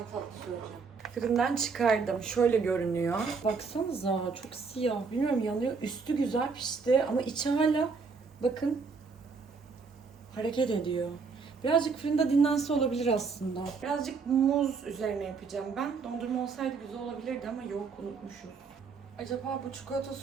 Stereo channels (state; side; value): quieter; left; 4.9 dB